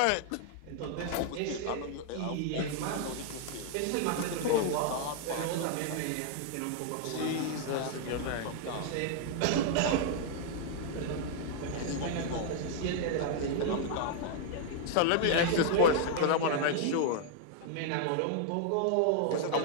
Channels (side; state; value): both; different; correlation 0.00